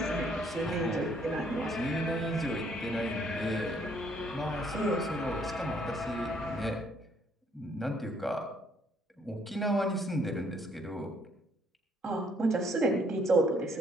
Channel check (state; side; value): normal; both; correlation 0.66